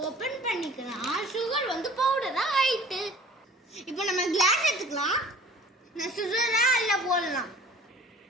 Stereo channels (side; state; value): both; normal; correlation 0.47